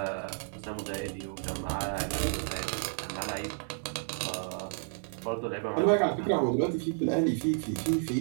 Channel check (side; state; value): left; silent; digital silence